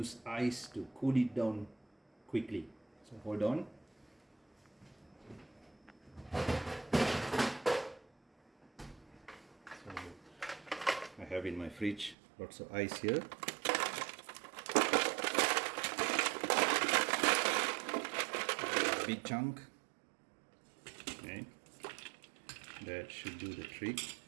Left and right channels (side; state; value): left; drops out; at 12.2 s